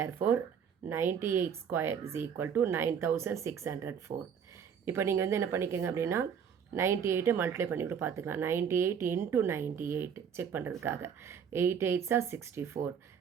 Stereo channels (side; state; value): left; quieter; 7.5 dB